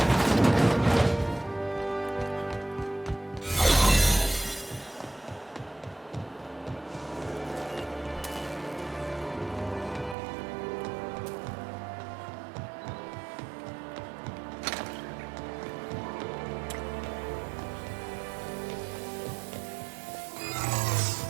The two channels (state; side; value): drops out; left; at 10.2 s